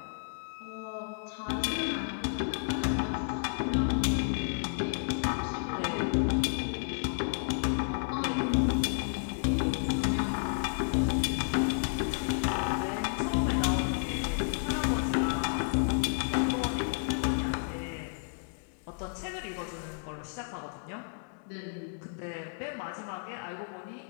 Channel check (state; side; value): silent; right; 57 dB below the other